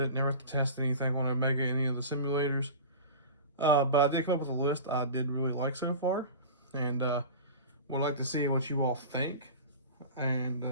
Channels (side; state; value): both; inverted; correlation -0.34